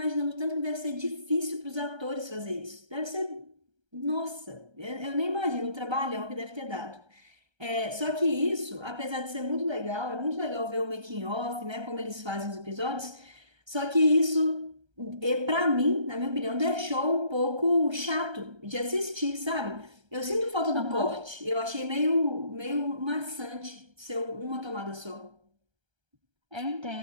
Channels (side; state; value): left; late; 1.3 ms